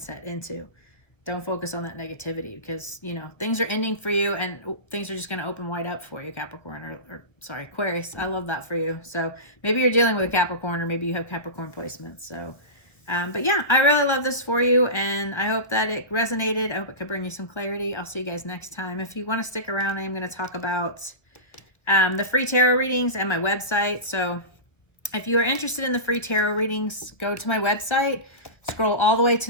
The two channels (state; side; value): late; right; 1.1 ms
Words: into. Don't focus on that negativity, because, you know, things are ending for you and things are just going to open wide up for you, Capricorn, or sorry, Aquarius. I love that for you. So maybe you're dealing with a Capricorn, or maybe you have Capricorn placements. So, but yeah, I really love this for you, and I hope that it resonated. I hope it could bring you some clarity. I'll see you guys next time. If you want to stick around, I'm going to talk about the free tarot readings and my website. So if you are interested in the free tarot readings, go to my website, scroll all the way